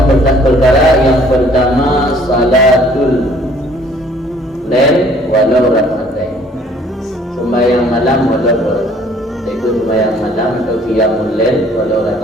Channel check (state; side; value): normal; both; correlation 0.57